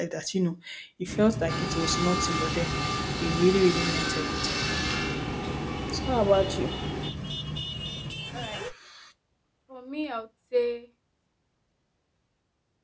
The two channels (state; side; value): identical; both; correlation 1.00